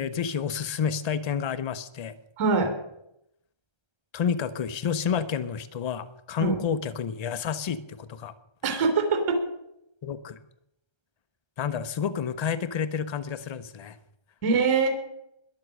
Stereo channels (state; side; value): late; right; 1.3 ms